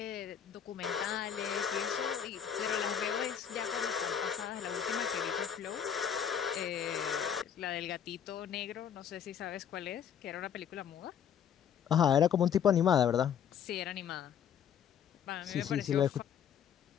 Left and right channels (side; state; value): right; quieter; 8.5 dB